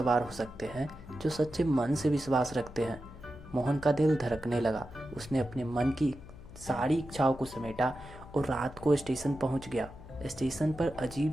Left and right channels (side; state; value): left; noise; hum, 17 dB below the sound